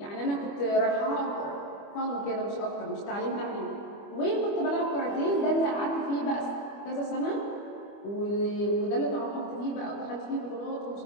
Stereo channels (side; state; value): right; late; 25 ms